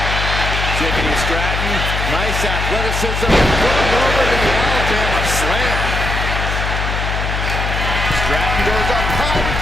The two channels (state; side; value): noise; left; hum, 2 dB below the sound